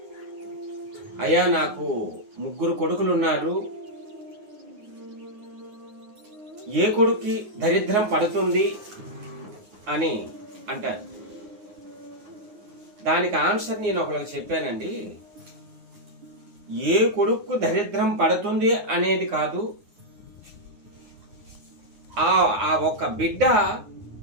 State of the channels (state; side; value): late; left; 9.6 ms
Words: అయ్యా నాకు 3 కొడుకులు ఉన్నారు, ఏ కొడుక్కి దరిద్రం పడుతుంది అని అంటారు. దానికి ఆన్సర్ నేను ఒకరికి చెప్పానండి. ఏ కొడుకు దరిద్రం పడుతుంది అనేది కాదు, ఆ ఒక్క బిడ్డ